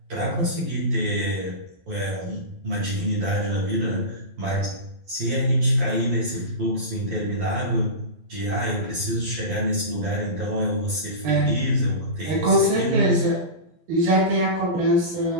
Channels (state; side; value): late; left; 12 ms